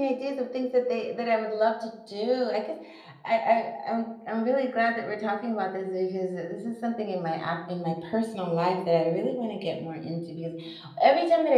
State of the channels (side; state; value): both; identical; correlation 1.00